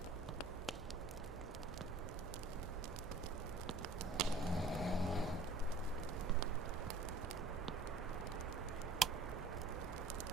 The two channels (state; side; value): quieter; left; 3.0 dB